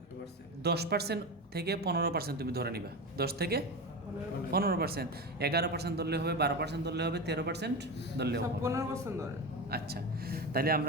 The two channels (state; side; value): normal; both; correlation 0.22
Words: 10% থেকে 15% তুমি ধরে নিবা। 10 থেকে 15%, 11% ধরলে হবে, 12% ধরলে হবে, 13% ধরলে হবে। 15% ধরে। আচ্ছা, তাহলে